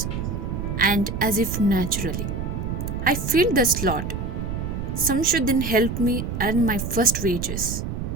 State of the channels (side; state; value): right; noise; rumble, 4 dB below the sound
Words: and as if naturally, I filled the slot. Samshuddin helped me earn my first wages.